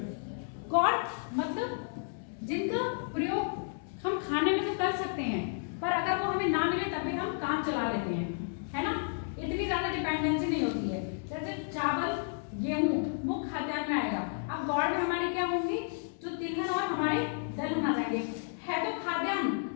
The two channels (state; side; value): silent; right; digital silence